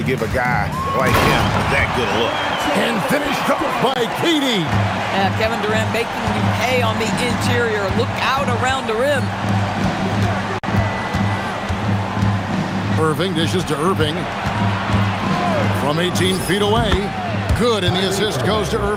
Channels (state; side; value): identical; both; correlation 1.00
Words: give a guy like him that good a look. And finished off by KD. Yeah, Kevin Durant making you pay on the interior. Look out around the rim. Irving dishes to Irving. From 18 feet away. Good, and the assist goes to